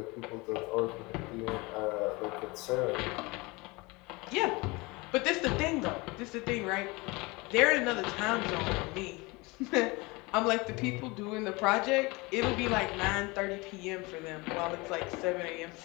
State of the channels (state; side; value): quieter; right; 24.9 dB